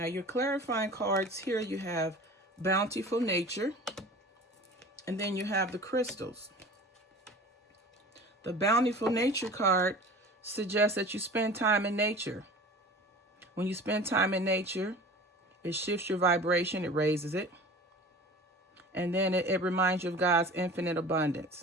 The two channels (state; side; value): normal; both; correlation 0.40